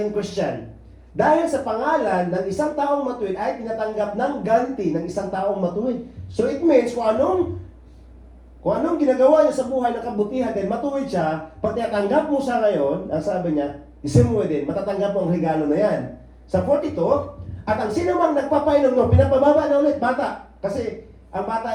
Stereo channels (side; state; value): both; identical; correlation 1.00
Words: Christian. Dahil sa pangalan ng isang taong matuwid ay tinatanggap ng ganti ng isang taong matuwid. So it means kung anong ginagawa niya sa buhay ng kabutihan, then matuwid siya, pag tinatanggap mo siya ngayon, ang sabi niya, isang mo din, matatanggap mo ang regalo na yan. Sa 42, at ang sino mang nagpapainom no, pinapababa na ulit, bata. Kasi ang